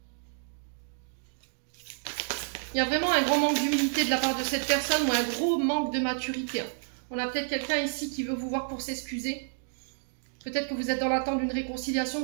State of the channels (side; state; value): left; silent; digital silence